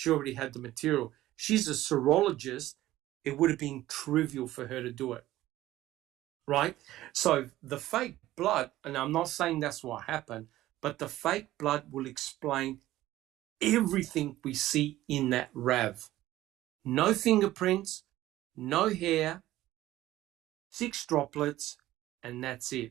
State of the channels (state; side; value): quieter; left; 15.4 dB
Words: already had the material. She's a serologist. It would have been trivial for her to do it, right? So the fake blood, and I'm not saying that's what happened, but the fake blood will explain everything we see in that RAV. No fingerprints, no hair, 6 droplets, and that's